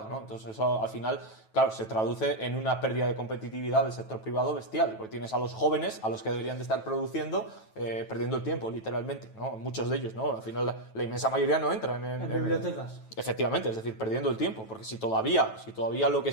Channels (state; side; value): late; right; 9.2 ms